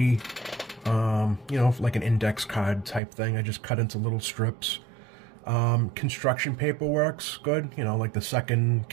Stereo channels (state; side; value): drops out; left; at 3.0 s